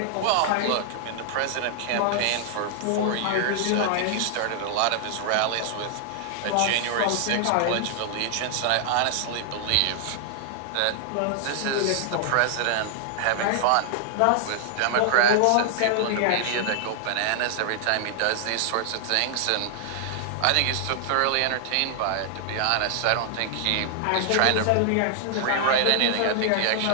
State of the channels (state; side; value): different; both; correlation 0.00